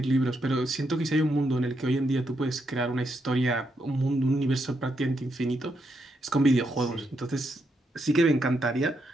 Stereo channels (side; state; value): both; normal; correlation 0.80